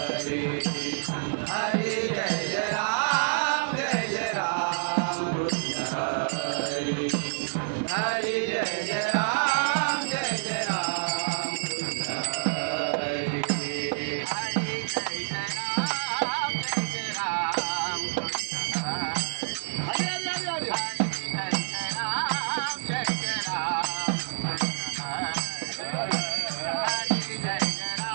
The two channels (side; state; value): left; silent; 59 dB below the other